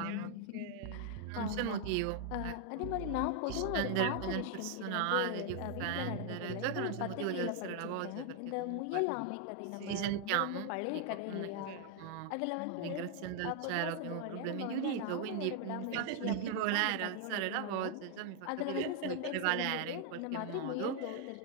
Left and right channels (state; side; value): different; both; correlation 0.00